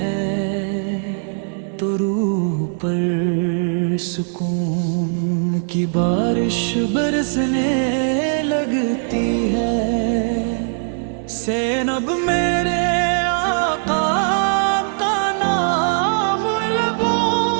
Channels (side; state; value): left; silent; 66 dB below the other